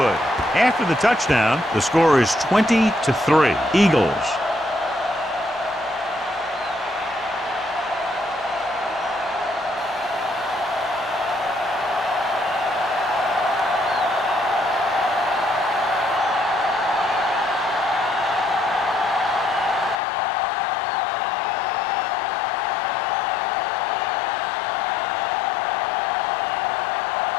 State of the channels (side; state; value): right; drops out; at 20.0 s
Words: After the touchdown, the score is 20-3. Eagles.